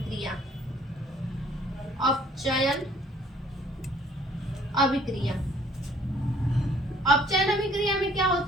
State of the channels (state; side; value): normal; both; correlation 0.58